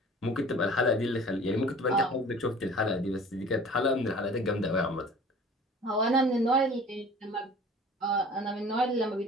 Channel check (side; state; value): both; normal; correlation 0.45